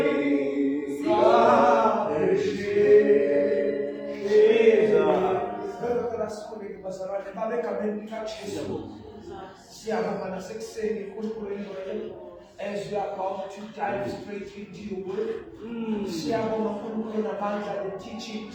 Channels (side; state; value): both; identical; correlation 1.00